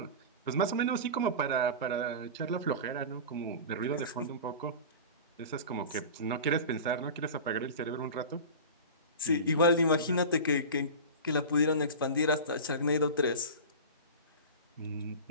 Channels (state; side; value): inverted; both; correlation -0.30